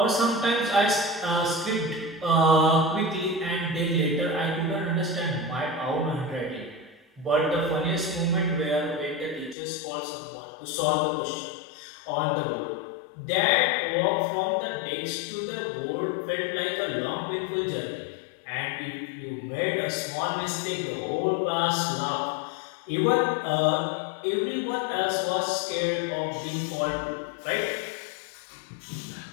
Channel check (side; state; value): right; drops out; at 9.6 s